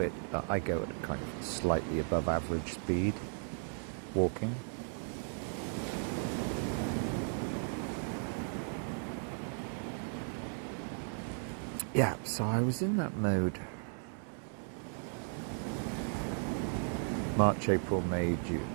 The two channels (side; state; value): left; silent; 54 dB below the other